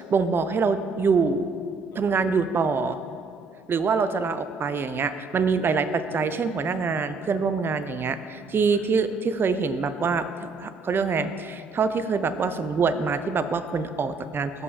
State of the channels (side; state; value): left; quieter; 4.4 dB